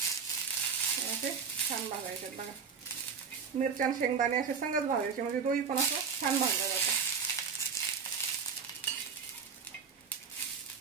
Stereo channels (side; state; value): left; quieter; 6.1 dB